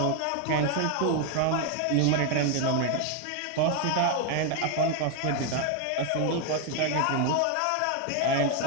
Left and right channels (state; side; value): different; both; correlation 0.01